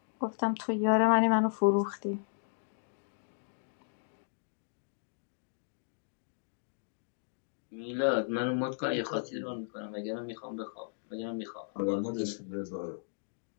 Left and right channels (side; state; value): right; silent; digital silence